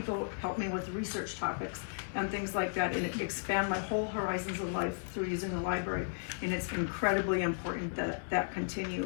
help me with research topics and things like that, and expand my whole horizons of life through using the library, and it's incredibly important that that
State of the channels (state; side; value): silent; right; digital silence